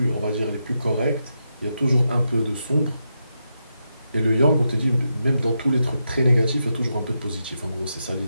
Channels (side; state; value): both; inverted; correlation -0.85